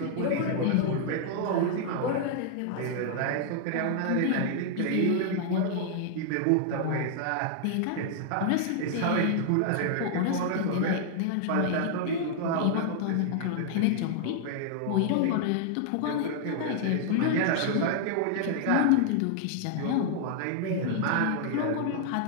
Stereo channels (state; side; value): different; both; correlation -0.01